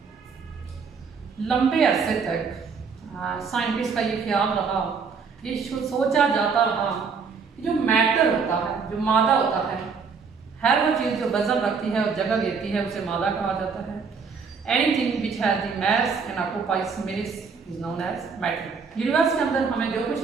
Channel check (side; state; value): left; quieter; 5.5 dB